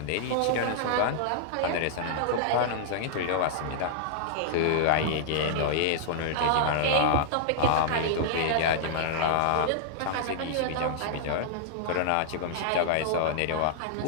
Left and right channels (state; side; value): different; both; correlation -0.01